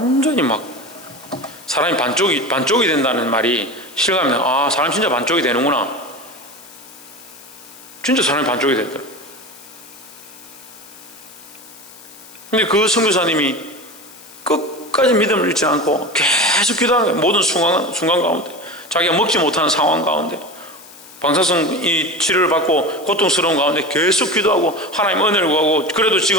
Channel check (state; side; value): noise; left; hiss, 20 dB below the sound